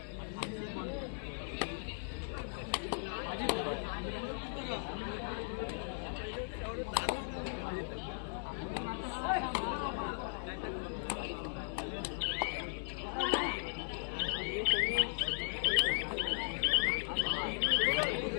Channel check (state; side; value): silent; right; digital silence